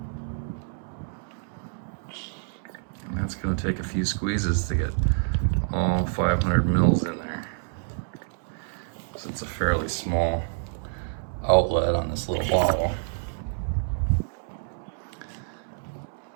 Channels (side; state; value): left; silent; 60 dB below the other